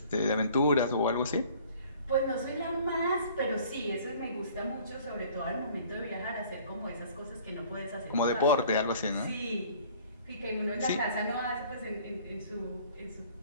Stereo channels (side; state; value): both; inverted; correlation -0.53